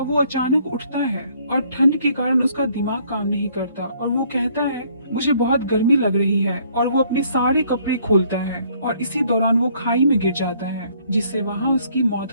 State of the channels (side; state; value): both; inverted; correlation -0.63